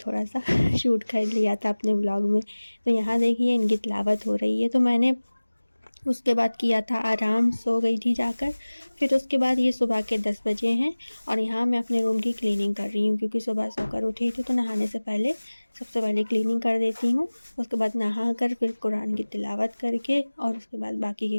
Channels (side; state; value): both; inverted; correlation -1.00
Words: सा शूट कर लिया था अपने व्लॉग में। तो यहाँ देखिए, इनकी तिलावत हो रही है। तो मैंने उसके बाद किया था आराम, सो गई थी जाकर। फिर उसके बाद ये सुबह के 10 बजे हैं और यहाँ मैं अपने रूम की क्लीनिंग कर रही हूँ क्योंकि सुबह सोकर उठी थी तो नहाने से पहले सबसे पहले क्लीनिंग कर देती हूँ। उसके बाद नहा कर फिर कुरान की तिलावत करके और उसके बाद बाकी